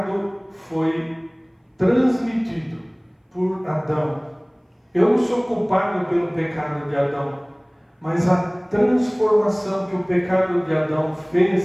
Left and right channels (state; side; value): identical; both; correlation 1.00